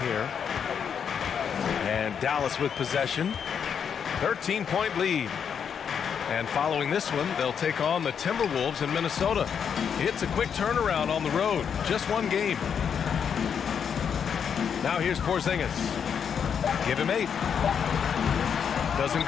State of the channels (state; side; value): quieter; right; 7.4 dB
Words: And Dallas with possession. 13-point lead. And following this one, they'll take on the Timberwolves in Minnesota. It's a quick turnaround on the road. Just 1 game. Now here's Porzingis. Give him 8. Doesn't